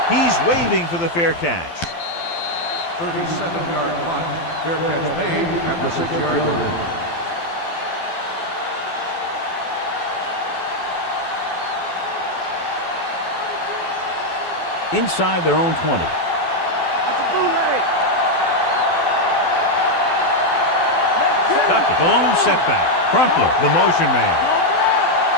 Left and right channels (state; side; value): late; right; 12 ms